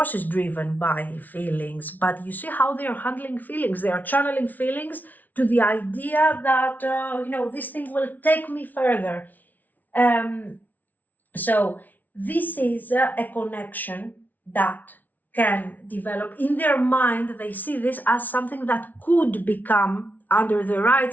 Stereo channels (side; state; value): right; late; 0.080 ms